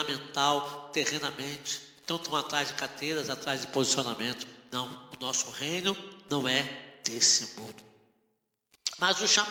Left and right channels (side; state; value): both; identical; correlation 1.00